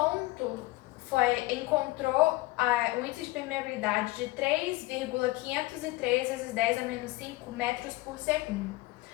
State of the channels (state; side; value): quieter; right; 20.1 dB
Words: encontrou o índice de permeabilidade de 3,503 vezes 10 a menos 5 metros por segundo.